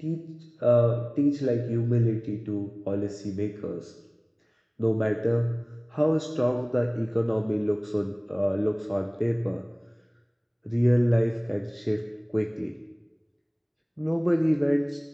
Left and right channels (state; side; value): identical; both; correlation 1.00